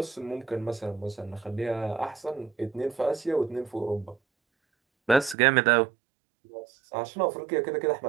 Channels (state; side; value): drops out; left; at 5.4 s